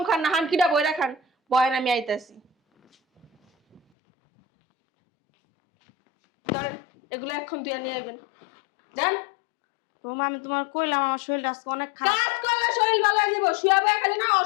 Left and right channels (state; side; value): drops out; right; at 3.8 s